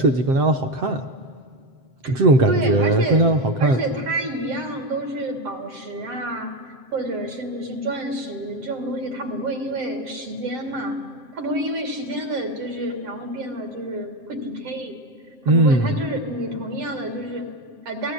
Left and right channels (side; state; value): left; late; 7.6 ms